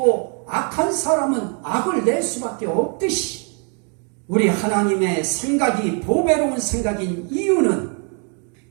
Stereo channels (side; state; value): left; quieter; 38.4 dB